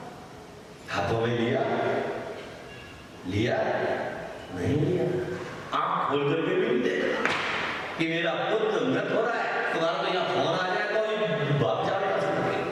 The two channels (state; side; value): identical; both; correlation 1.00